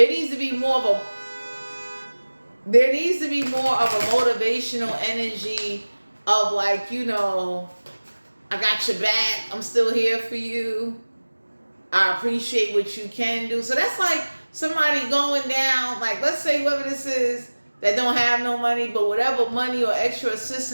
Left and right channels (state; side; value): inverted; both; correlation -1.00